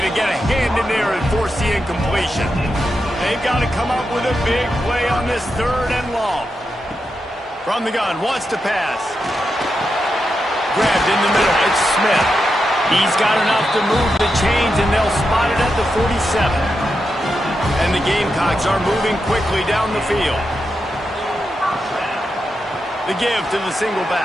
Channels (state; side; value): normal; both; correlation 0.87